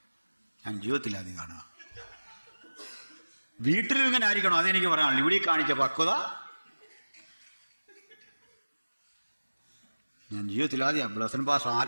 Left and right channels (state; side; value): inverted; both; correlation -1.00